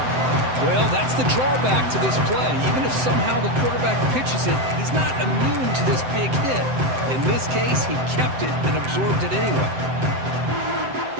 Well, that's the drawback to this play. Even if somehow the quarterback pitches it, he's not immune to this big hit. In this case, he kept it and absorbed it anyway.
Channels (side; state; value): left; late; 7.8 ms